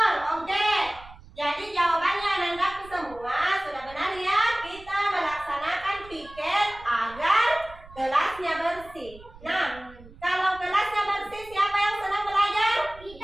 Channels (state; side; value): noise; right; rumble, 20 dB below the sound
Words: Oke. Jadi jawabannya anandaku semua sudah benar ya. Kita melaksanakan piket agar kelasnya bersih. Nah, kalau kelasnya bersih, siapa yang senang belajar?